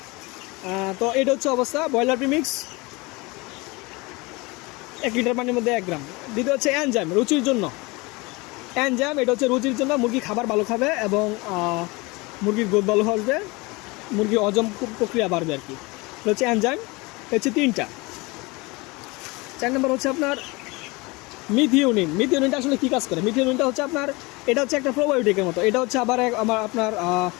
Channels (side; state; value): right; quieter; 24.9 dB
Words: তো এটা হচ্ছে অবস্থা ব্রয়লার প্রিমিক্স 1 লিটার পানির মধ্যে 1 গ্রাম। দ্বিতীয় হচ্ছে এনজাইম, রুচির জন্য এনজাইম, এটা হচ্ছে রুচির জন্য, মুরগি খাবার ভালো খাবে এবং মুরগির গ্রোথ ভালো হবে, মুরগির হজম প্রক্রিয়া বাড়বে আর কি। এটা হচ্ছে এনজাইম, হচ্ছে 3টা। 4 নম্বর হচ্ছে আপনার মিথিওনিন। মিথিওনিনটা আসলে কী কাজ করে? মিথিওনিনটা হচ্ছে আপনার, এটা হচ্ছে একটা প্রোবায়োটিকের মতো। এটা হচ্ছে আবার আপনার